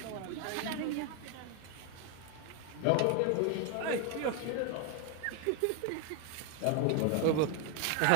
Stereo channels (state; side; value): different; both; correlation 0.01